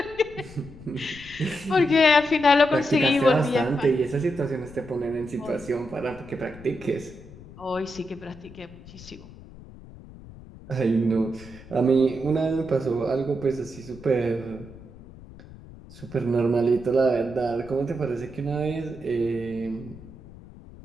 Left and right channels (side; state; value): left; noise; rumble, 18 dB below the sound